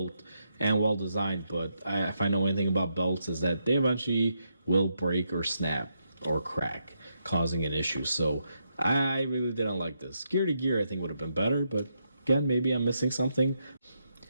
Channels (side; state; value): both; inverted; correlation -0.81